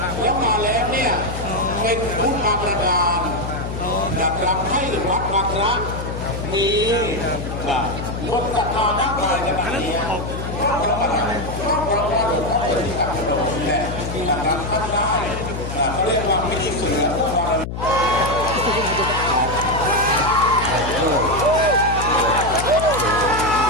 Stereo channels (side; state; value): left; noise; hum, 6 dB below the sound